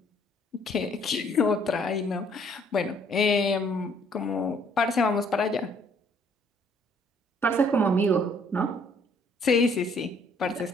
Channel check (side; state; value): both; normal; correlation 0.63